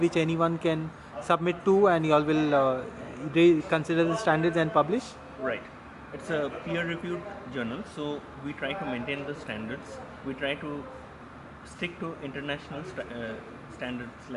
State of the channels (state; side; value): identical; both; correlation 1.00